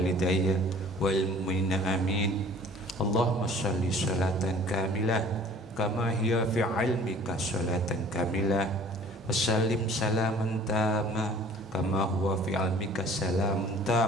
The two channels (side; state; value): both; normal; correlation 0.49